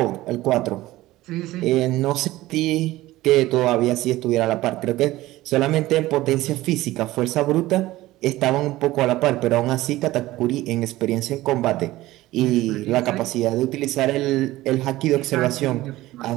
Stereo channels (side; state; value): left; quieter; 17.1 dB